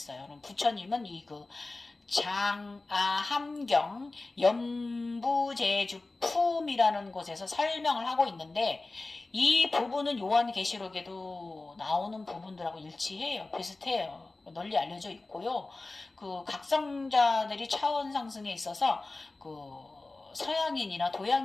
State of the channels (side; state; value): right; quieter; 3.2 dB